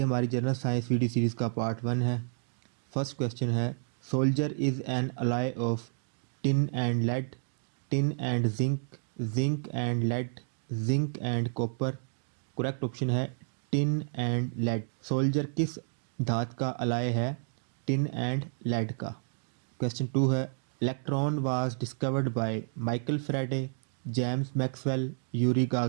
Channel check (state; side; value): silent; left; digital silence